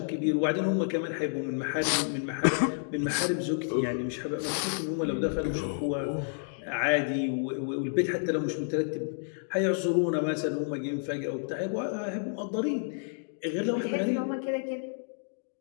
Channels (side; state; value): right; silent; digital silence